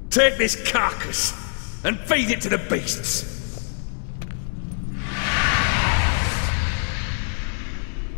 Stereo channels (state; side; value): silent; right; 63 dB below the other